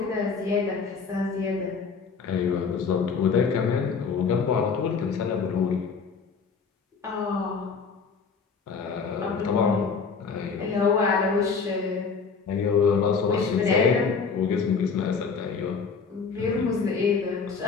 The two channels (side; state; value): right; quieter; 5.4 dB